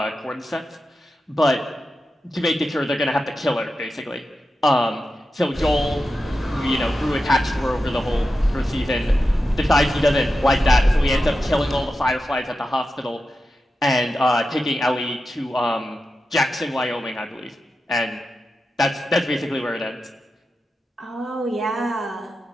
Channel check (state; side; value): normal; both; correlation 0.91